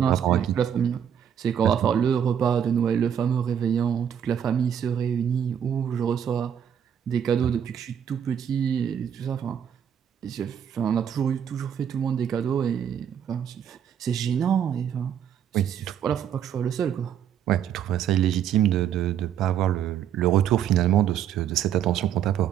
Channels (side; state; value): left; quieter; 9.0 dB